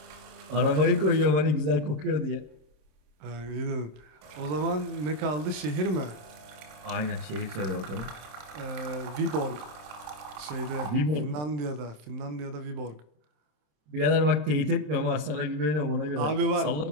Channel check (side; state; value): left; late; 27 ms